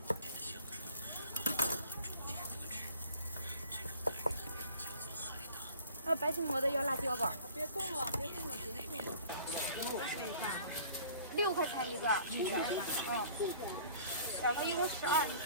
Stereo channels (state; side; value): inverted; both; correlation -0.50